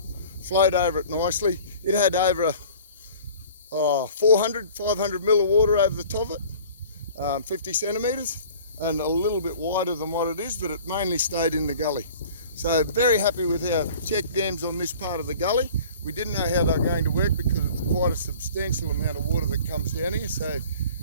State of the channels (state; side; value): inverted; both; correlation -0.46